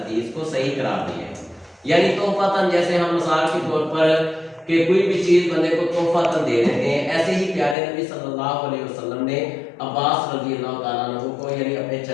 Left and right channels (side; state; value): right; drops out; at 7.8 s